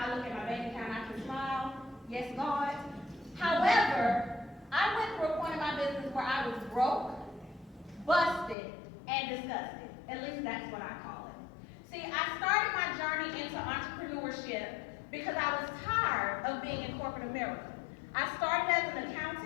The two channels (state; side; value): drops out; right; at 8.6 s